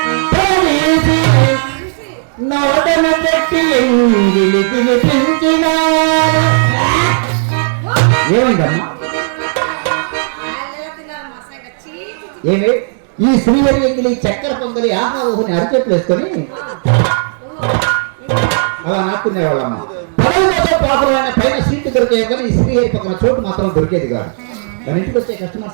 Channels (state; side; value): silent; left; digital silence